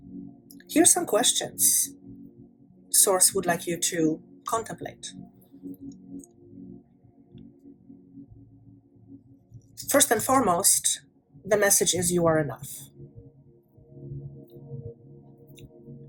Here's some questions Source would like you to contemplate. First and foremost, the message is you are enough.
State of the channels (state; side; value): identical; both; correlation 1.00